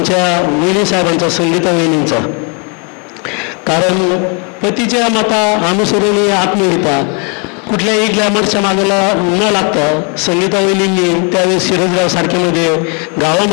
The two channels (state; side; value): quieter; right; 35.4 dB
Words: वहिनी साहेबांचा, संगीता वहिनींचा. कारण पतीच्या मता अनुसरून आत्महत्या कुठल्याही ग्लॅमरच्या मागेला न लागता संगीता वहिनींनी त्यावेळेस सिरसगाव सारख्यामध्ये